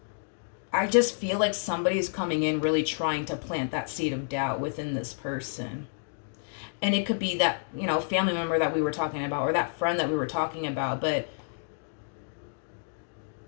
I just feel like somebody's coming in really trying to plant that seed of doubt within this person. And it could be that, family member that we were talking about or that friend that we were talking about. But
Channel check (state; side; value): silent; right; digital silence